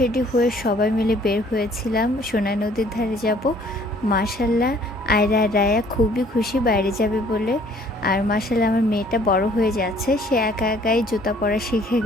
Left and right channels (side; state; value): both; normal; correlation 0.58